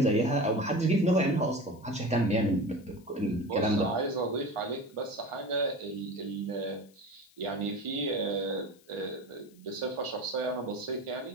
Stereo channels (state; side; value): noise; left; hiss, 29 dB below the sound